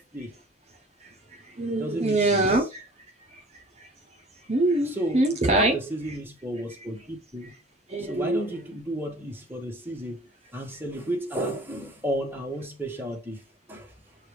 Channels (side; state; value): both; normal; correlation 0.48